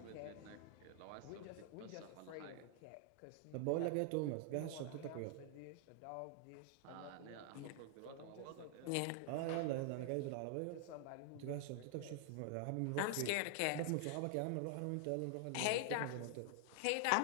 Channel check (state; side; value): different; both; correlation 0.00